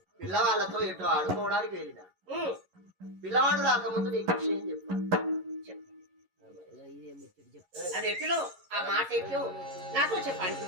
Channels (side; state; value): left; late; 11 ms